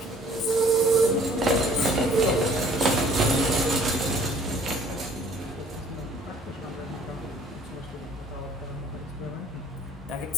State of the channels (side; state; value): both; normal; correlation 0.56